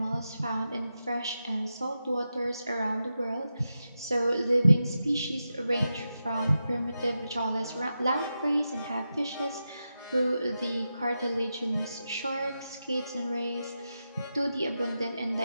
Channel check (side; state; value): both; inverted; correlation -0.89